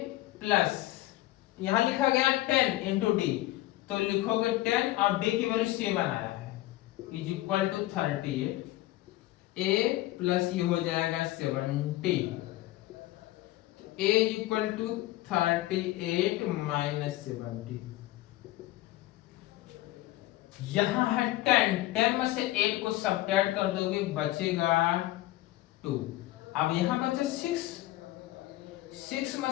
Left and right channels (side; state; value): right; quieter; 16.9 dB